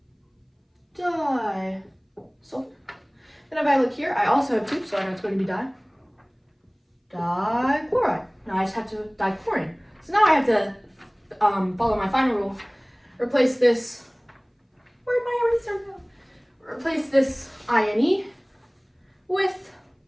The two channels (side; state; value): both; identical; correlation 1.00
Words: Di sulfur. Then if I look here, I also have 2, so I know it's going to be di. Dichloride. Now I just have to dichlorine. So now I have to follow my final rule. Replace this. Where'd my eraser go? Replace this INE with